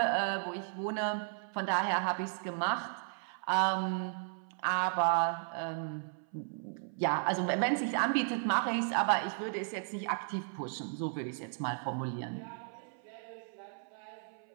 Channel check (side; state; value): left; silent; 55 dB below the other